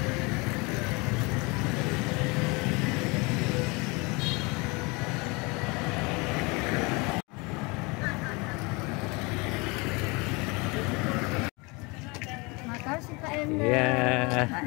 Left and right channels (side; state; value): right; quieter; 27.3 dB